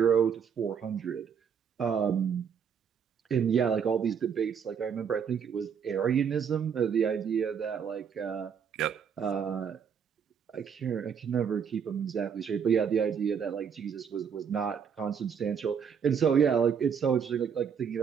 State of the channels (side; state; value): left; quieter; 7.2 dB